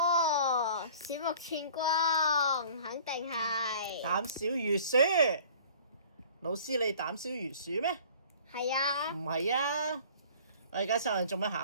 喎，鼠目寸光，肯定係。膽小如鼠。老師，你膽小如鼠咩？係啊。唔係啊！我而家上嚟做乜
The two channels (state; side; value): inverted; both; correlation -0.49